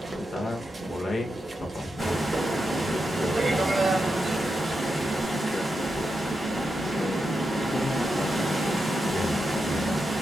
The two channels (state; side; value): normal; both; correlation 0.86